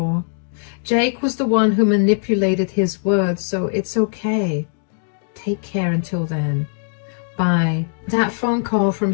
Jake was the one who manipulated his words, so it's okay. Take care until then. Bye. That phone call from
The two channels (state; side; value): silent; right; digital silence